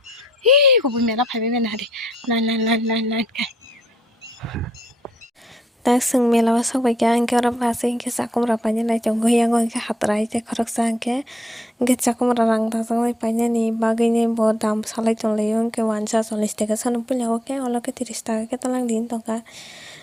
Hi ko bu mena phai mena di. Nan kai. Tak sung melawa sok baikya angke ora basi angke sakum rapanya nai jonggo yang angke hatrai te khorok sa angke sakum rang ta sang panya ni bagai ni bo dam salai tong le angke 140 taka sanum punya oke oloke 30 taka ke talang din tongka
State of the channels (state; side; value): normal; both; correlation 0.72